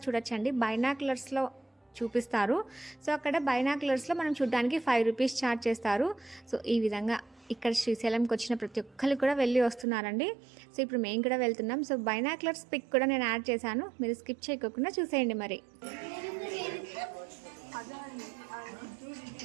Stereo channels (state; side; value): drops out; left; at 9.9 s